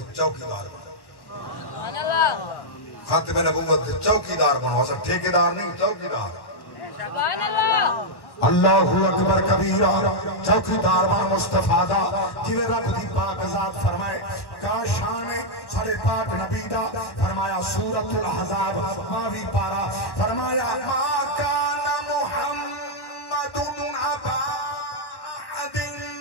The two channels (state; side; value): late; right; 1.1 ms